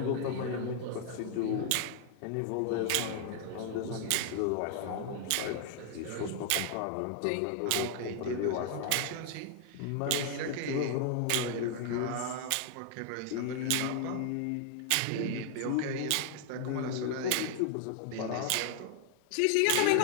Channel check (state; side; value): different; both; correlation -0.01